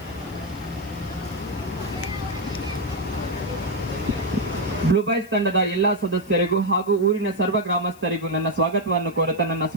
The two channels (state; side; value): noise; left; hiss, 24 dB below the sound